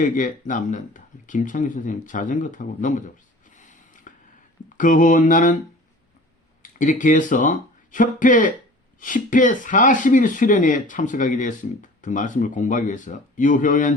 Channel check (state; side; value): normal; both; correlation 0.44